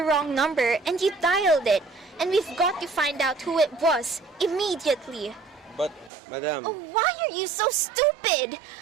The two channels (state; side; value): drops out; left; at 6.1 s